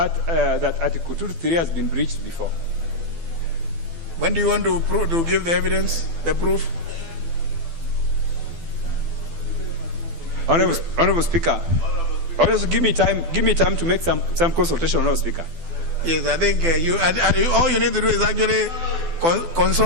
2-3 has been breached before. When do you want to give the evidence, the proof? Honorable Speaker, also give me time to make some consultation, Honorable Speaker. Yes, I think all you need to do is actually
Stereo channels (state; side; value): late; left; 12 ms